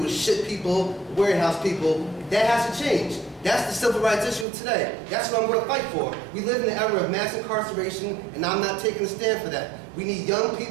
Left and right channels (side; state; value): left; drops out; at 4.5 s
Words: is ship people, warehouse people. That has to change. That's the civil rights issue of today. That's what I'm going to fight for. We live in an era of mass incarceration, and I'm not taking a stand for that. We need young